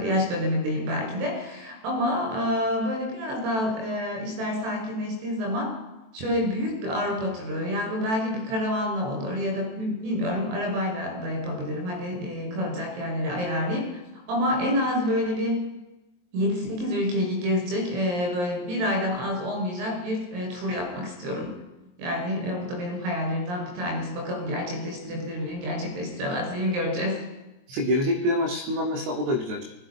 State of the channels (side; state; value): left; late; 23 ms